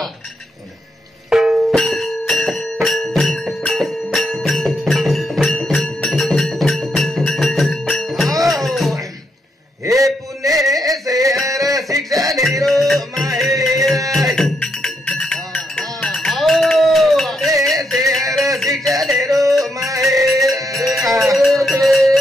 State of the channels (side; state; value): both; normal; correlation 0.79